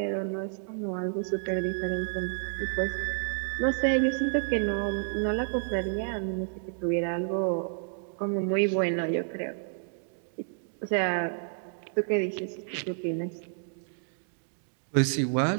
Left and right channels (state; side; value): silent; left; digital silence